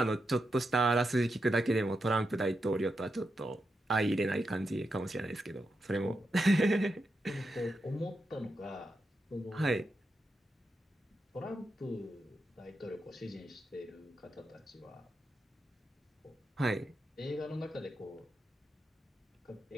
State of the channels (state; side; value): normal; both; correlation 0.86